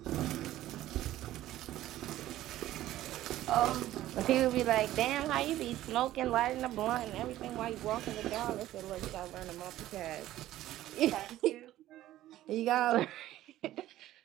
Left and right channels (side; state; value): left; quieter; 14.3 dB